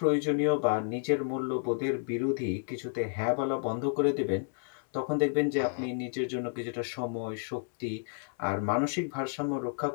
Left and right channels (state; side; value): silent; right; 57 dB below the other